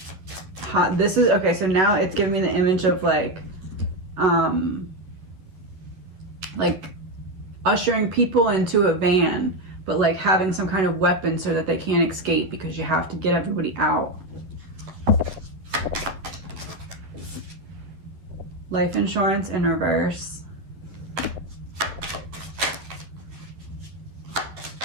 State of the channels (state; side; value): late; left; 11 ms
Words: This is okay. So now it's giving me the image of like ushering people into a van, but like having some kind of weapon so that they can't escape because you have to get everybody out. Life insurance in reverse.